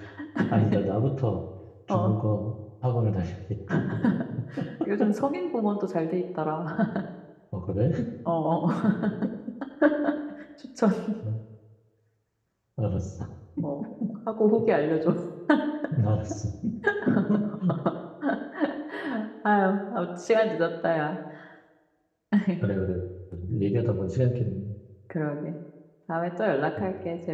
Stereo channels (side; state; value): both; identical; correlation 1.00